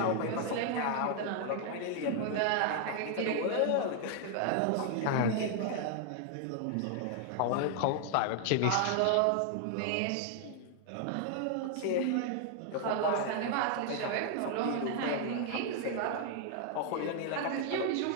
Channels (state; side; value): different; both; correlation 0.00